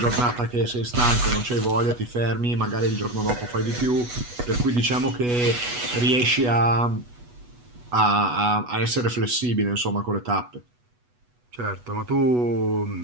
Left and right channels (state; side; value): late; left; 8.2 ms